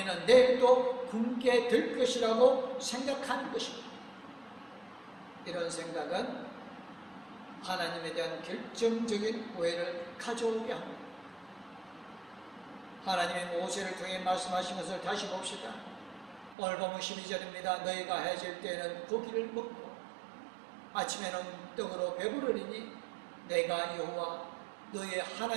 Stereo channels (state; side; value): drops out; left; at 16.6 s